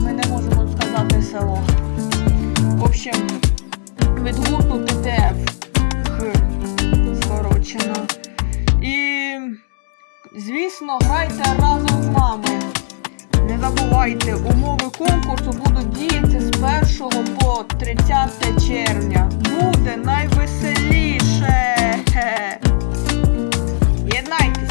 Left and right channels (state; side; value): silent; right; 61 dB below the other